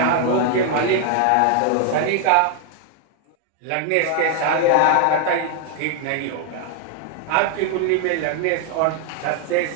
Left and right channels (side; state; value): both; different; correlation 0.00